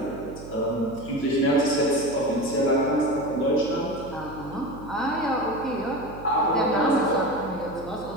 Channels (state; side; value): noise; right; hum, 15 dB below the sound